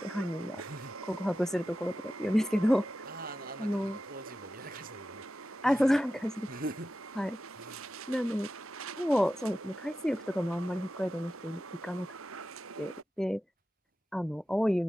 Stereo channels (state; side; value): normal; both; correlation 0.93